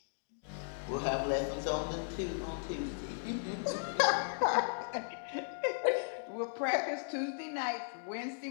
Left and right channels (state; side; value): silent; right; digital silence